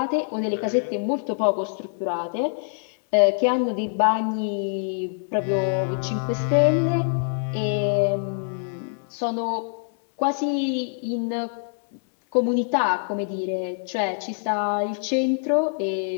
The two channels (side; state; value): right; silent; 62 dB below the other